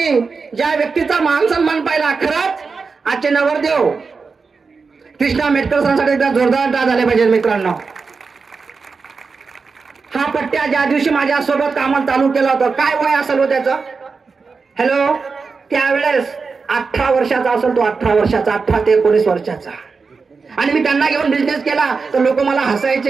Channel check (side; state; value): left; quieter; 4.7 dB